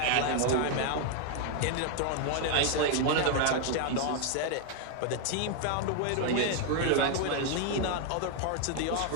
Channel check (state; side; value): different; both; correlation 0.00